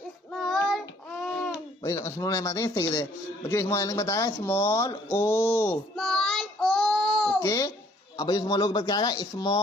स्मॉल एम आते हैं इस तरीके से। बच्चों स्मॉल एन के बाद आएगा स्मॉल ओ। ओके अब बच्चों स्मॉल ओ के बाद क्या आएगा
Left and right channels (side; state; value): both; normal; correlation 0.61